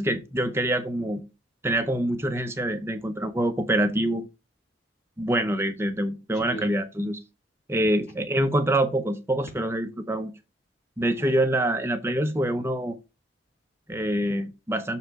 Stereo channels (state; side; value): normal; both; correlation 0.68